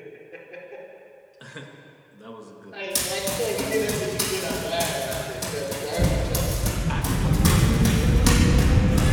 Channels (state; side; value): identical; both; correlation 1.00